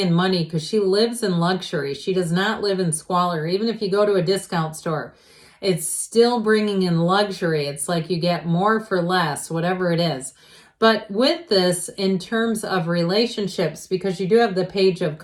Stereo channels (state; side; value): identical; both; correlation 1.00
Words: money because she lives in luxury. She does not live in squalor. Even if you go to a discount store, it's still bringing in luxury. It's like you get more for less, whatever it is. But with this, in terms of relationships, because you do have the Page of